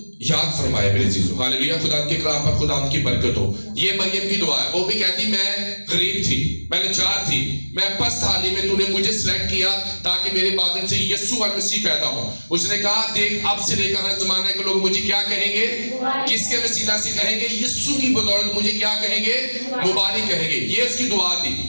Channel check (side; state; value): both; inverted; correlation -1.00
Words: याद फरमाए। मेरे चीजों हालेलुया, खुदा के कलाम पर खुदा की बरकत हो। ये मरियम की दुआ है। वो भी कहती मैं गरीब थी, मैं लाचार थी, मैं पस्त हाली में तूने मुझे सिलेक्ट किया ताकि मेरे बादल से यीशु मसीह पैदा हो। उसने कहा देख अब से लेकर हर जमाने के लोग मुझे क्या कहेंगे, किसके वसीला से कहेंगे, यीशु की बदौलत मुझे क्या कहेंगे, मुबारक कहेंगे। ये उसकी दुआ थी।